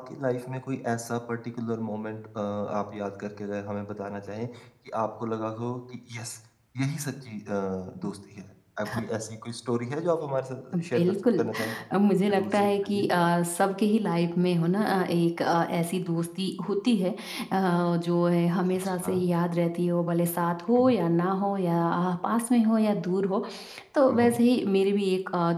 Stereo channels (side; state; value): both; identical; correlation 1.00